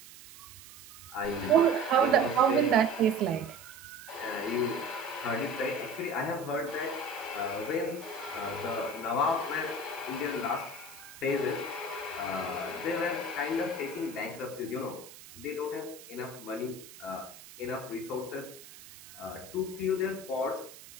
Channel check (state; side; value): noise; right; hiss, 17 dB below the sound